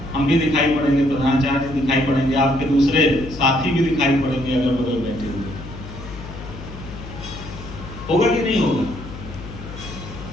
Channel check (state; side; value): noise; left; hum, 12 dB below the sound